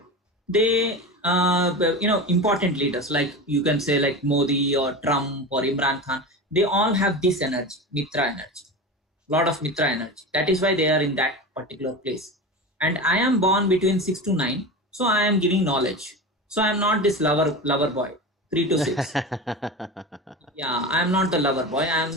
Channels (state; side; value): normal; both; correlation 0.27